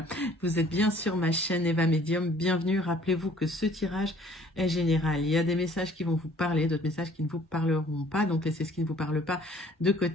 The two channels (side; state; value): both; normal; correlation 0.56